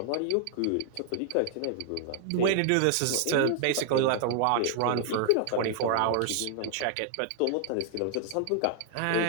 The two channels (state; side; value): different; both; correlation 0.00